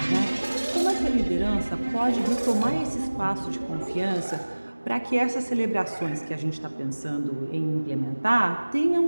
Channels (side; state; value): both; inverted; correlation -1.00